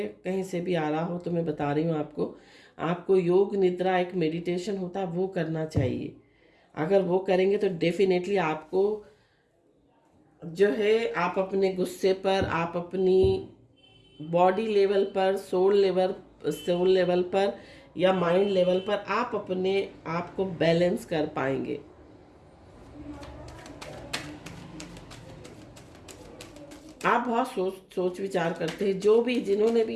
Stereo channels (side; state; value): both; identical; correlation 1.00